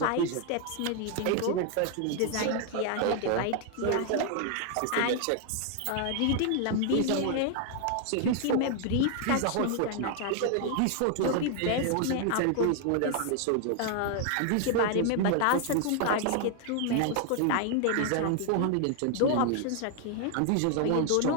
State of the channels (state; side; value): different; both; correlation 0.00